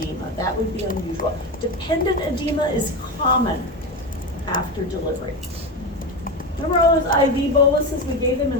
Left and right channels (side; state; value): both; normal; correlation 0.19